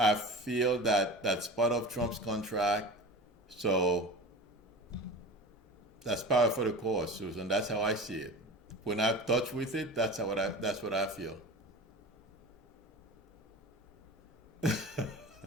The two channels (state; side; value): normal; both; correlation 0.34